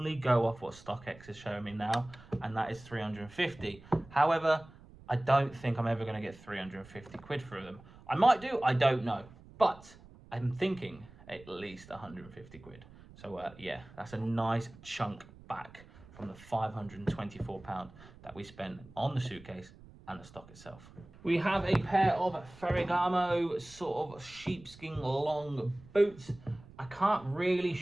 go off what StockX is showing me now, and that is 350. However, I don't think I'm ever going to get 350 quid for them. I might do, I don't know. But I'm thinking at least 150 quid. So yeah, that's a nice chunk back from the £524 that we spent on the suitcase and the stock itself. We have a pair of Ferragamo sort of sheepskin long boots. I can't really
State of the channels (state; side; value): noise; right; rumble, 21 dB below the sound